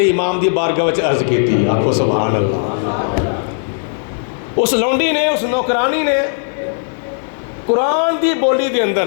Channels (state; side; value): silent; right; digital silence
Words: امام دی بارگاہ وچ عرض کیتی، آکھو سبحان اللہ۔ اس لونڈی نے، اس نوکرانی نے قرآن دی بولی دے